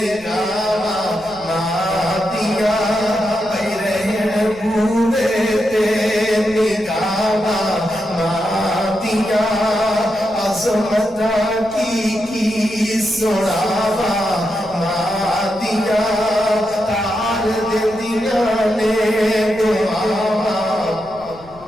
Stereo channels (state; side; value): noise; left; rumble, 23 dB below the sound